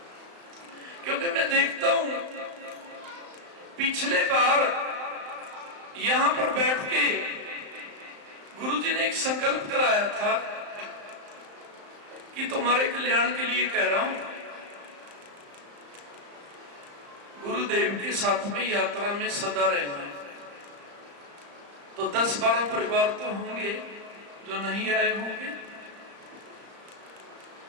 क्योंकि मैं देखता हूं पिछले बार यहां पर बैठ के गुरुजी ने एक संकल्प कराया था कि तुम्हारे कल्याण के लिए कह रहा हूं, गुरुदेव के साथ में यात्रा में सदा रहना है। तो 10-12 परिवार तो होंगे जो नहीं आए होंगे,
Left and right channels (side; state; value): left; late; 35 ms